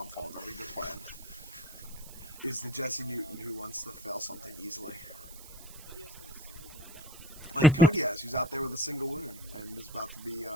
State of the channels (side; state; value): right; noise; hiss, 17 dB below the sound